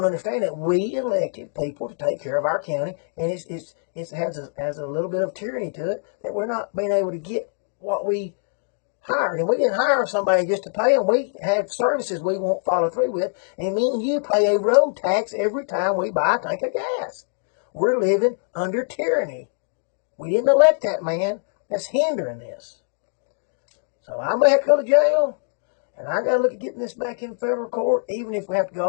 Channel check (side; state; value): right; silent; digital silence